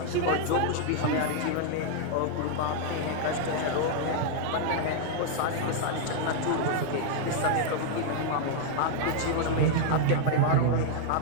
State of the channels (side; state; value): both; different; correlation 0.00